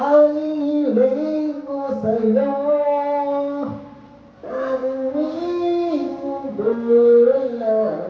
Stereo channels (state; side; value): identical; both; correlation 1.00